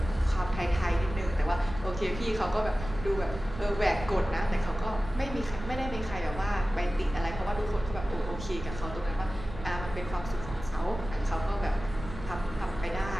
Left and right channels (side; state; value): right; noise; rumble, 11 dB below the sound